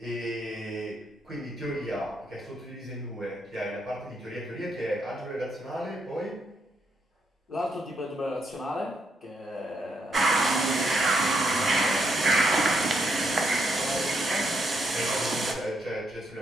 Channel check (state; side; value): normal; both; correlation 0.77